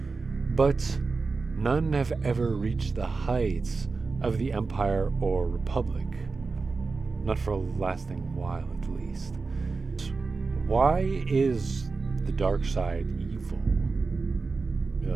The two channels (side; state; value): left; quieter; 4.2 dB